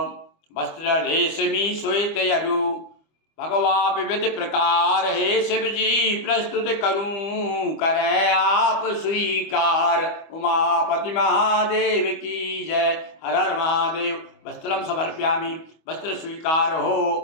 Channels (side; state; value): right; late; 25 ms